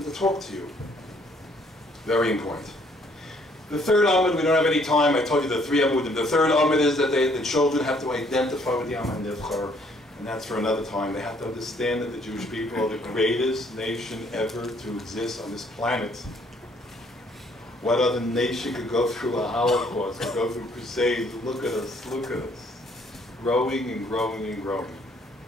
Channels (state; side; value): normal; both; correlation 0.64